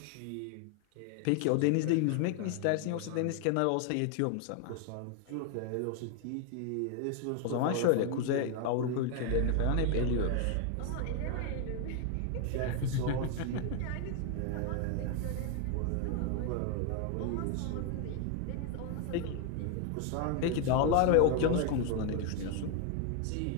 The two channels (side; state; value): both; different; correlation 0.01